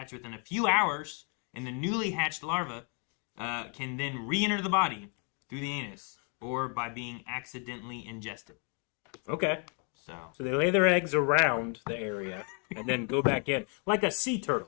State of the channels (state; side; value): quieter; right; 38.4 dB